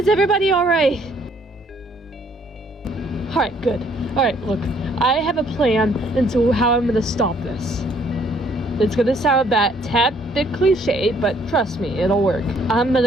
everybody alright? Alright, good. Alright, look, I have a plan into how I'm gonna stop this. It's gonna sound a tad bit cliche, but trust me, it'll work. I'm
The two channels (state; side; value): normal; both; correlation 0.64